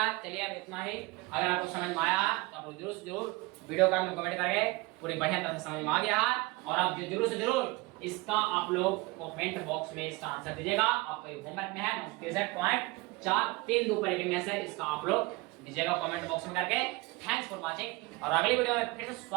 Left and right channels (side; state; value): left; quieter; 23.2 dB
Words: चलिए अब इतना ही। अगर आपको समझ में आया तो आप जरूर वीडियो का कमेंट करके पूरी बढ़िया तरह से समझ में आ गया है, और आप जरूर से जरूर इसका आप लोग कमेंट बॉक्स में इसका आंसर दीजिएगा। आपको होमवर्क में है 63.432 पर रेकरिंग है सर, इसका आप लोग दीजिएगा कमेंट बॉक्स में करके। थैंक्स फॉर वाचिंग, और अगली वीडियो में फिर से